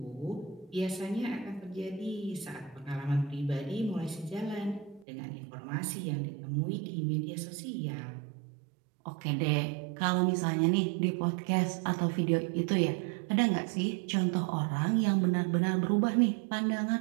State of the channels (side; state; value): left; drops out; at 5.1 s